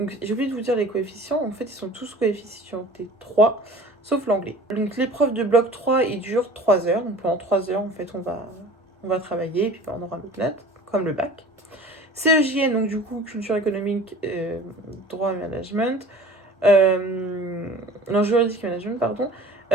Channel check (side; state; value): both; normal; correlation 0.44